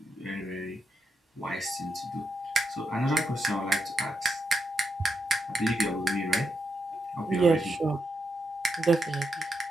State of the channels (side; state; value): both; normal; correlation 0.83